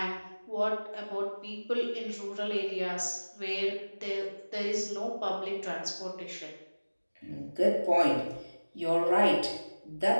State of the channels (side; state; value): both; inverted; correlation -1.00